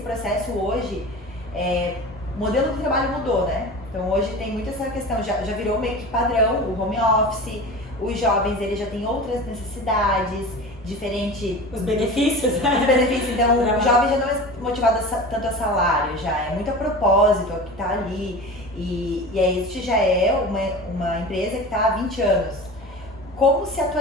hoje? O modelo de trabalho mudou, né? Então hoje tem muito essa questão, já virou meio que padrão, o home office, os jovens eles já têm outras necessidades, diferente... Os benefícios, né? Os benefícios, então o jovem já não é motivado tanto a salário, já é muito a propósito, o que está ali. E aí este já é uma empresa que está há 20 anos. Como se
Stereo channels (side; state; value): both; normal; correlation 0.34